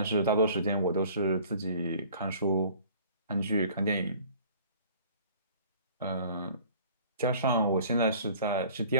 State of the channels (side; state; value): both; inverted; correlation -0.50